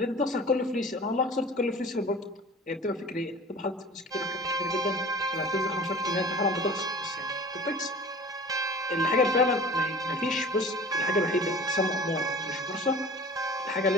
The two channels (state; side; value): normal; both; correlation 0.42